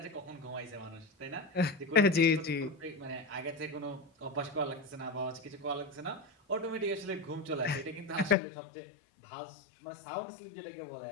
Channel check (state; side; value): drops out; right; at 8.3 s